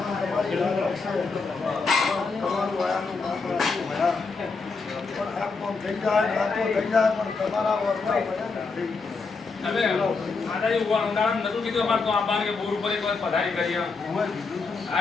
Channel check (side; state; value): right; quieter; 4.4 dB